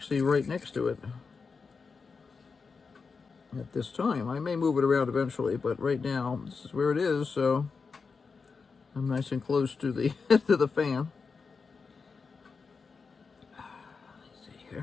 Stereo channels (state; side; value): quieter; right; 5.0 dB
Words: right next to it at this time. I may move it around eventually, but right now this is where it is, so I'm nice and close to the to the fan. Let's see